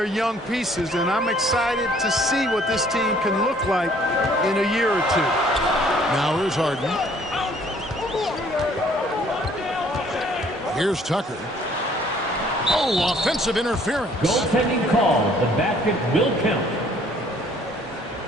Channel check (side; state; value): both; normal; correlation 0.59